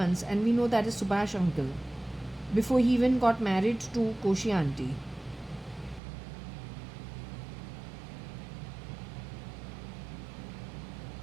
and we know that is Subhash uncle before he even got married to Koshi auntie.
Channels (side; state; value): left; drops out; at 6.0 s